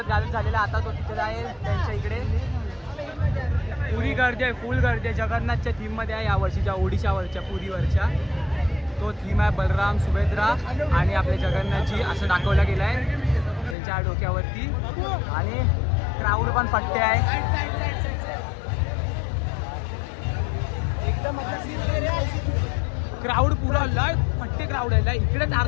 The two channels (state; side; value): drops out; right; at 13.8 s